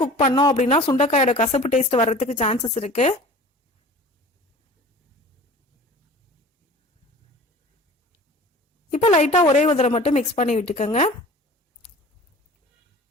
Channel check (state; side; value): normal; both; correlation 0.42